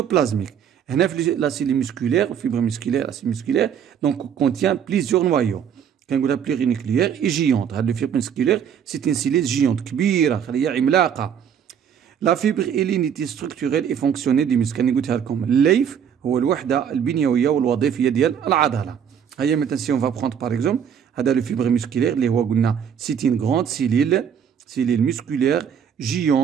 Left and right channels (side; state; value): left; quieter; 8.2 dB